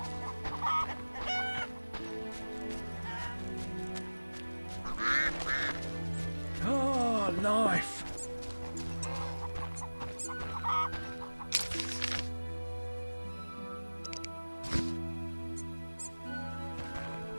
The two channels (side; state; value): both; inverted; correlation -1.00